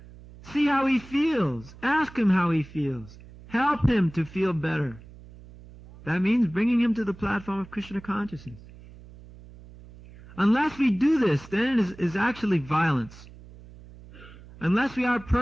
See how he feels. Ask him how he feels. Help him to feel better. That means bringing him to the platform of Krishna consciousness. Unless we do this, then it is actually violence. Unless we are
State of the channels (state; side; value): noise; right; hum, 20 dB below the sound